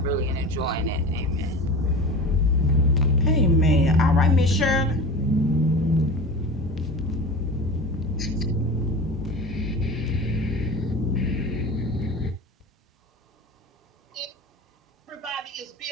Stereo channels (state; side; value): normal; both; correlation 0.33